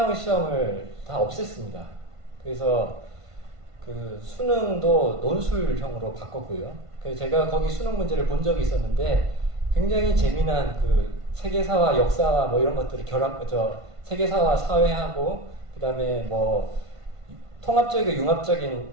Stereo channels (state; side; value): late; left; 1.5 ms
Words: 시험을 다 없앴습니다. 그래서 그 수능도 논술형으로 바꿨고요. 그래서 제가 거기 수능 문제를 본 적이 있었는데, 굉장히 재미난 그 세계사와 역사와 뭐 이런 것들을 세계사와 사회하고, 그 다음에 뭐 통합적이고